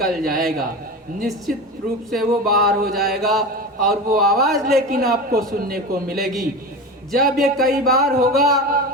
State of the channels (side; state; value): both; normal; correlation 0.26